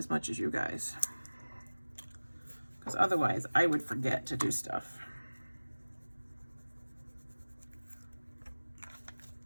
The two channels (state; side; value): inverted; both; correlation -1.00